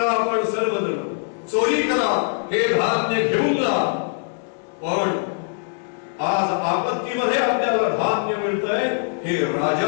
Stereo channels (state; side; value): silent; right; digital silence